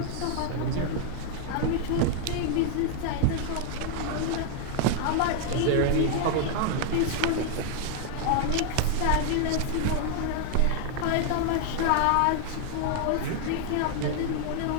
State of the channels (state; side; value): different; both; correlation 0.00